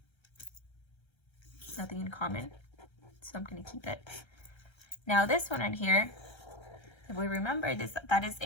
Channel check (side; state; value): right; late; 1.3 ms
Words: nothing in common, so I'm going to keep it. Now this one right here, if we remember this, that is